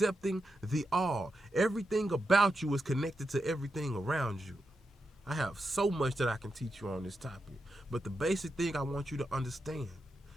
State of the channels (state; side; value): normal; both; correlation 0.87